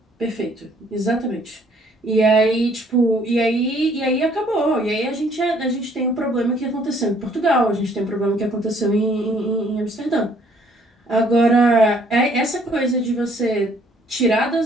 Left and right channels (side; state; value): both; normal; correlation 0.62